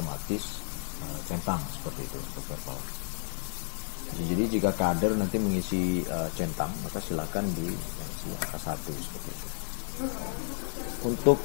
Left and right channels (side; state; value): right; silent; 57 dB below the other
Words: centang seperti itu untuk verbal. Jadi jika kader nanti mengisi centang, maka silakan diisi angka 1 seperti itu. Untuk